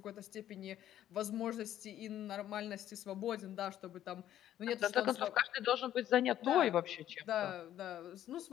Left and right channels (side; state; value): right; quieter; 11.9 dB